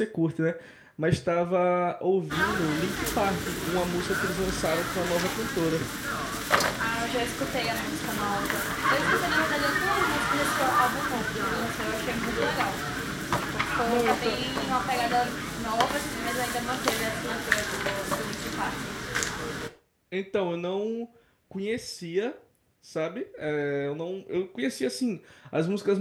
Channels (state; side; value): identical; both; correlation 1.00